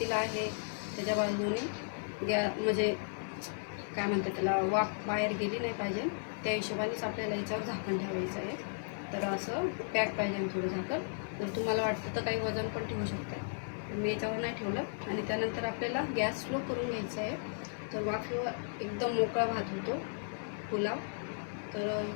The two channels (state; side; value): silent; right; digital silence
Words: आहे त्याच्या बाजूने म्हणजे काय म्हणते त्याला वाफ बाहेर गेली नाही पाहिजे त्या हिशोबानेच आपल्याला याच्यावर झाकण ठेवायचं आहे. तर असं पॅक पाहिजे थोडं झाकण. जर तुम्हाला वाटतं तर काही वजन पण ठेवू शकते, पण मी याच्यावर नाही ठेवलं. आणि त्यानंतर आपल्याला गॅस स्लो करून घ्यायचा आहे. तर वाफेवर एकदम मोकळा भात होतो पुलाव. तर